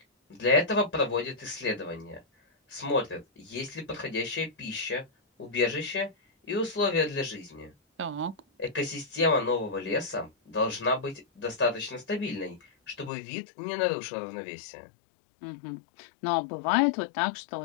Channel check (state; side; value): drops out; right; at 13.1 s